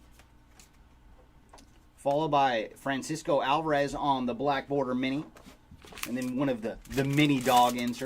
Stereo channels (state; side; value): identical; both; correlation 1.00